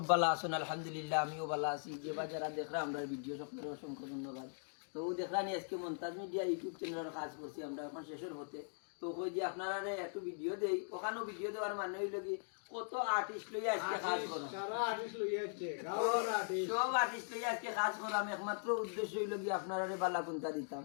ভালো আছেন। আলহামদুলিল্লাহ আমিও ভালো আছি। যে বা যারা দেখরা আমরা ভিডিও সকলের অসংখ্য ধন্যবাদ। তো দেখলানি আজকে মন্তাজ মিডিয়া ইউটিউব চ্যানেলের কাজ করছি আমরা এখন শেষের হতে। তো কই যে আপনারা একটু ভিডিও দেই, ওখানেও ভিডিও দেওয়ার মানে হইল কি কত আর্টিস্ট লইয়া আজকে কাজ করো, সারা আর্টিস্ট লইয়া আসছে গাওয়ার আর্টিস্ট সব আর্টিস্ট লইয়া আজকে কাজ করাম। একমাত্র উদ্দেশ্য হইল কি আপনারা বালা কুন্তা দিতাম,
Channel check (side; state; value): right; silent; digital silence